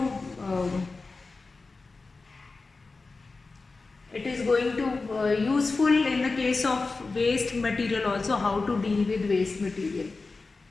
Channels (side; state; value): right; quieter; 3.9 dB